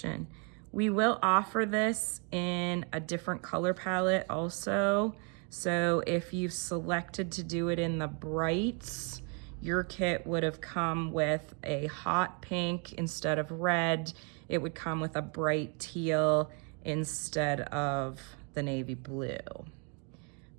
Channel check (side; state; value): left; quieter; 36.2 dB